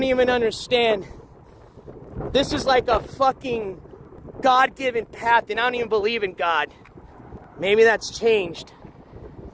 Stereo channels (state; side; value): identical; both; correlation 1.00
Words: even understand. This is like a fucking God-given path, and I don't even believe in God. Maybe that's changed.